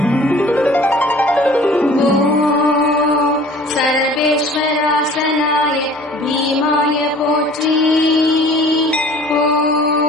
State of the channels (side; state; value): both; normal; correlation 0.49